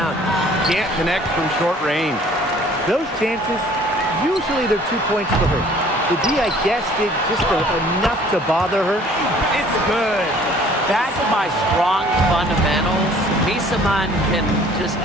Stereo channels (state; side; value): normal; both; correlation 0.54